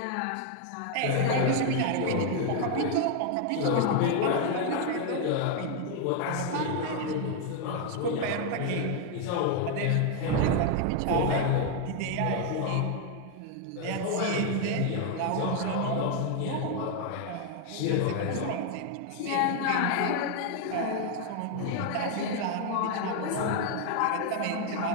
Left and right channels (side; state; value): both; different; correlation 0.01